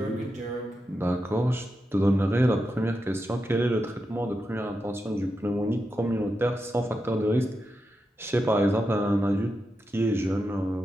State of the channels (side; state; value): both; normal; correlation 0.88